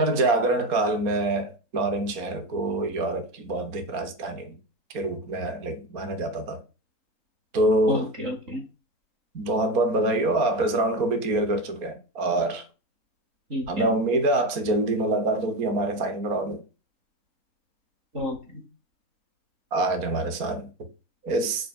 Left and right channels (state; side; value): late; left; 4.3 ms